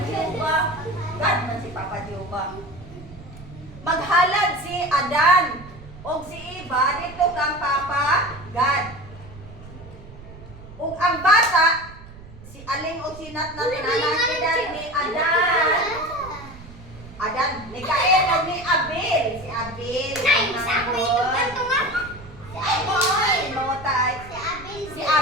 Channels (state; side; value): noise; right; rumble, 17 dB below the sound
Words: Jehovah. God man si Papa Jehovah. Maghalad si Adan o si Eva dito kang Papa God. Ug ang bata si Aling o si Nat na tinanakidan ni Adan. Adan, ni Cain o ni Abel. Si Abel. Nay, sa ako ito kanto nga. Si Abel. Mawatay. Si Abel. Si